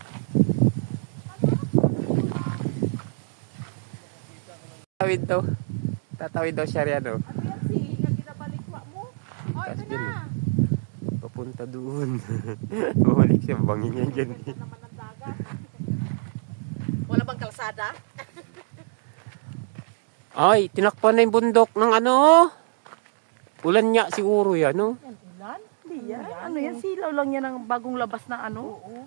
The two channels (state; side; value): silent; left; digital silence